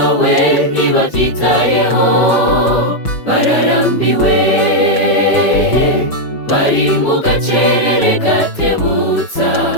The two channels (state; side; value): late; right; 6.2 ms